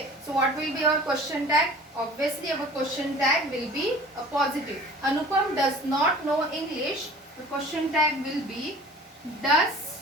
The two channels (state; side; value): normal; both; correlation 0.44